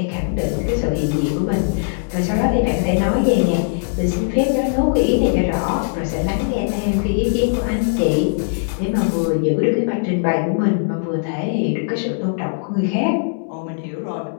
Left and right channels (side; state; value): right; silent; digital silence